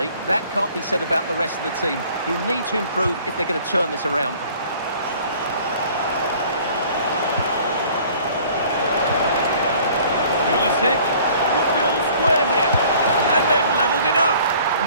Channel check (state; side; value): inverted; both; correlation -0.53